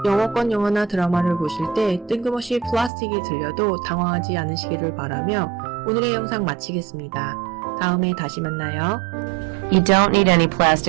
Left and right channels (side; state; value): left; drops out; at 2.9 s